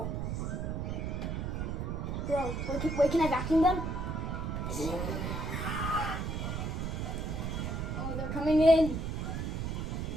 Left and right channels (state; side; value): noise; right; rumble, 2 dB below the sound